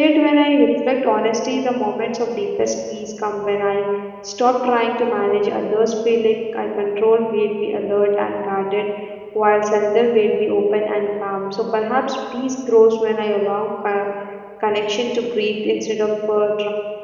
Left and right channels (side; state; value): both; identical; correlation 1.00